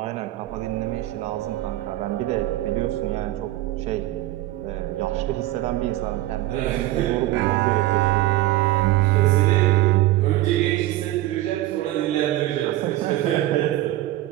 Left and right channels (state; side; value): quieter; left; 16.1 dB